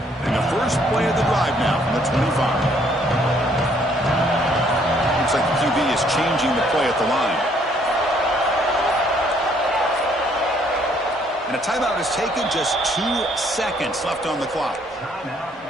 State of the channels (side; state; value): both; normal; correlation 0.65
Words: Play of the drive now from the 25. Looks like the QB is changing the play at the line. And a timeout is taken, just 2 seconds left on the clock.